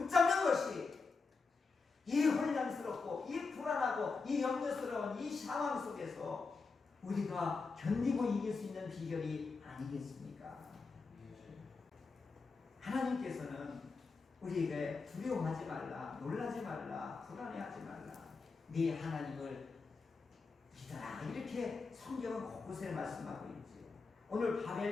것이 이 혼란스럽고 이 불안하고 이 염려스러운 이 상황 속에서 우리가 견디고 이길 수 있는 비결이 아니겠습니까? 하나님께서는 우리에게 두려워하지 말라, 놀라지 말라, 불안해하지 말라, 네 하나님을 믿어라. 이렇게 성경은 곳곳에 말씀하고 있지요. 오늘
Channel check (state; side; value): quieter; right; 4.4 dB